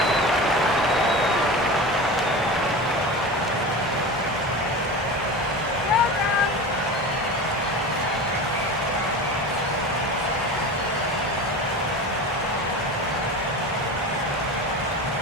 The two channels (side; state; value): both; normal; correlation 0.30